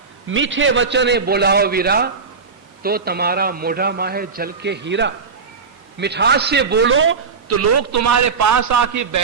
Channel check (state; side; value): quieter; left; 5.2 dB